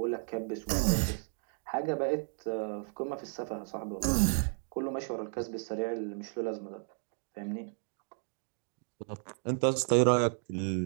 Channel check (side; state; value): left; silent; 55 dB below the other